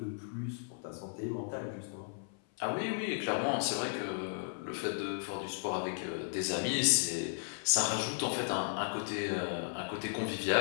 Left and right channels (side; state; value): right; silent; 54 dB below the other